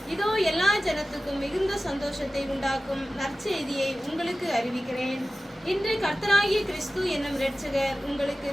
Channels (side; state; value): both; normal; correlation 0.95